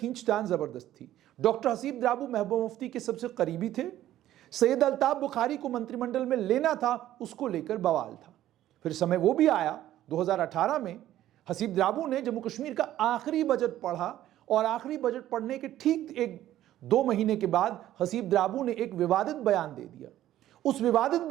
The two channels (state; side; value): quieter; left; 13.2 dB